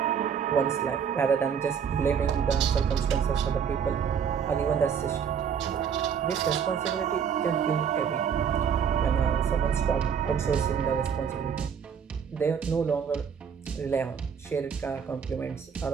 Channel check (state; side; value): quieter; left; 7.3 dB